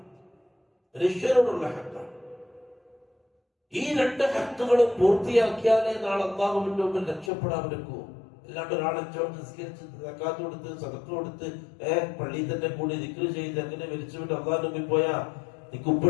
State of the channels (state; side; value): drops out; right; at 7.3 s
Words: ഈ രണ്ട് ഹക്കുകളും പൂർത്തിയാക്കിയാലേ നാളെ അല്ലാഹുവിന്റെ മുമ്പിൽ രക്ഷപ്പെടാൻ പറ്റൂ. അല്ലാണ്ട് ഒരാളെ നിസ്കരിച്ച് സക്കാത്ത് കൊടുത്ത് സദഖ കൊടുത്ത് പള്ളിയിൽ തന്നെ കൂടി ദിക്ർ ചെയ്ത് അങ്ങനെ മരിച്ചുവിട്ട് അല്ലാഹുവിന്റെ മുമ്പിൽ പോയാ നിനക്ക്